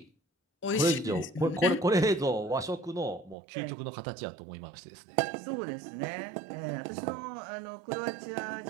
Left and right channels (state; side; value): drops out; left; at 3.4 s